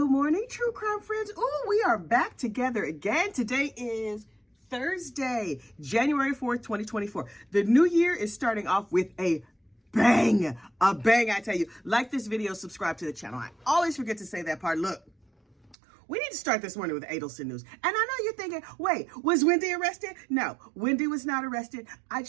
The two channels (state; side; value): drops out; left; at 15.8 s